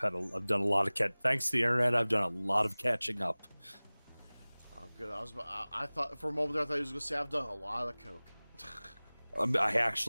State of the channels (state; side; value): inverted; both; correlation -1.00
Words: done a lot of thanks to the internet, I've done a lot of catching up. Oh, good. I thought for a moment there, I thought he was going to say I've done a lot of coke. I